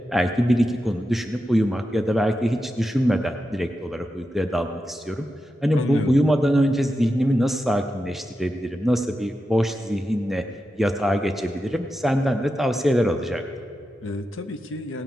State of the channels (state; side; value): normal; both; correlation 0.89